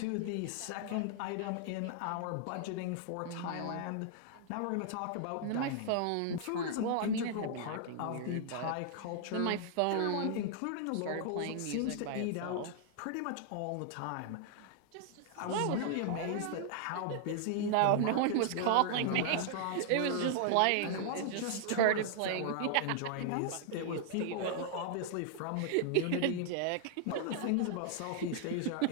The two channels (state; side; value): different; both; correlation -0.01